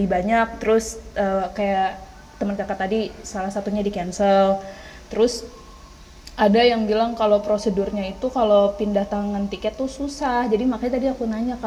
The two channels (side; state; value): both; identical; correlation 1.00